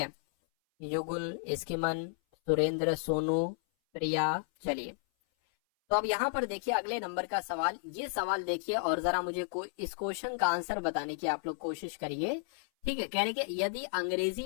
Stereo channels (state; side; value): silent; right; 56 dB below the other